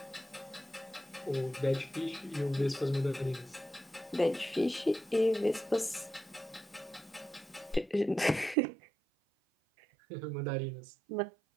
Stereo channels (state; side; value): drops out; left; at 8.6 s